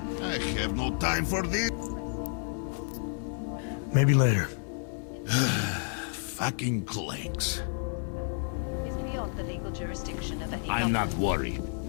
I have no time for this. Maybe later. Fucking clanks. is beyond the legal jurisdiction of any... I'm not worried.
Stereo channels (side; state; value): right; silent; 57 dB below the other